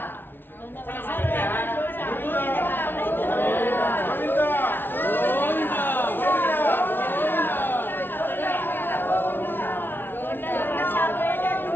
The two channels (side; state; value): right; late; 0.10 ms